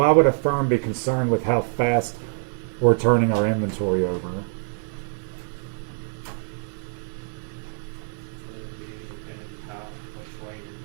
would a firm be concerned with how fast we're turning our inventory over?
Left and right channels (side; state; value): left; silent; digital silence